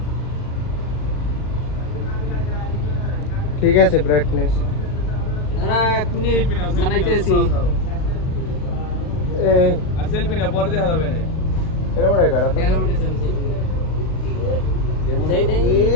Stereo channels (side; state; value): right; late; 40 ms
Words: ঠিক আছে। ব্রাইটনেস সেলফি না পরে দেখা যাবে এরকম রে করো